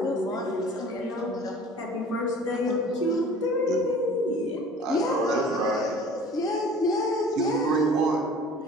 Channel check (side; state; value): both; normal; correlation 0.46